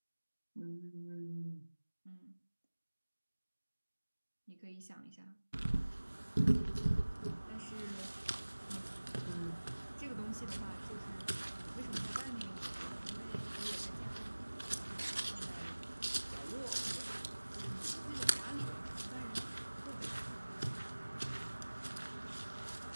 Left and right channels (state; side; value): inverted; both; correlation -1.00